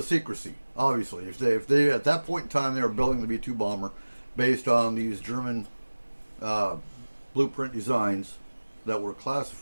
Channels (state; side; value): inverted; both; correlation -1.00